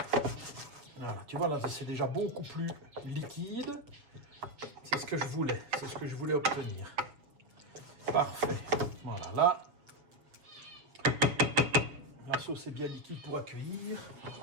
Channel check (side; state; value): left; late; 7.1 ms